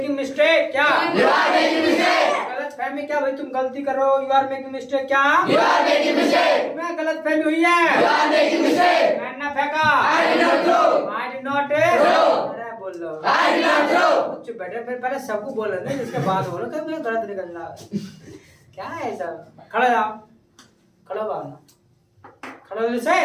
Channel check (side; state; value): both; identical; correlation 1.00